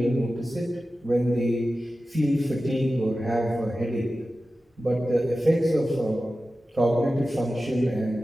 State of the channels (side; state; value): both; normal; correlation 0.94